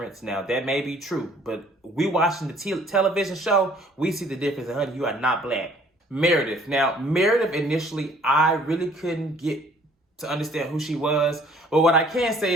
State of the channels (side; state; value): both; normal; correlation 0.57